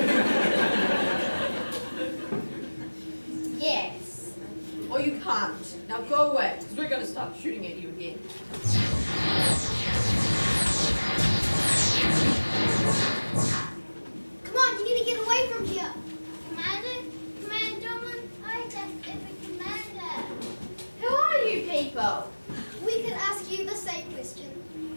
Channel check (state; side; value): inverted; both; correlation -1.00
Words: Yes. Or you can't. Now go away, because we're going to start shooting at you again. Come on, you need to get away from here. Commander? Commander? I just am a commander. Who are you people? We could ask you the same question.